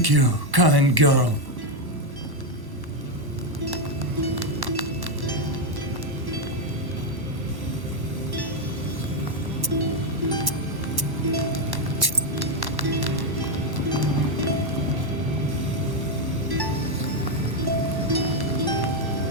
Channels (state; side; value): late; left; 1.1 ms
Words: you, kind girl.